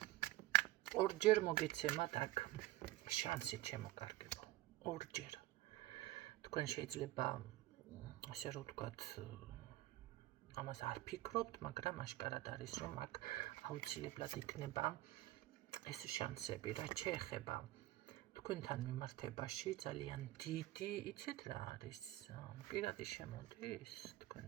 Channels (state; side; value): quieter; left; 16.7 dB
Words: ორჯერ მოგეცემათ აქ შანსი ჩემო კარგებო. ორჯერ. თქვენ შეიძლება ასე რომ ვთქვათ ამას არ ფიქრობთ, მაგრამ აშკარად არის რომ აქ აუცილებლად იქნება ეს შანსები, რაც შეეხება თქვენთან მიმართებაში ძალიან დიდი, იცით რა არის? პირადი შემოდის